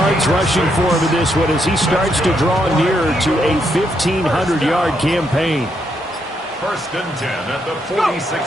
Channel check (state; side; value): normal; both; correlation 0.77